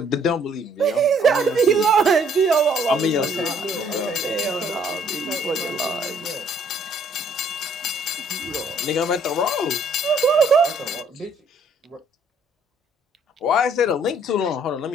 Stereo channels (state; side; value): normal; both; correlation 0.63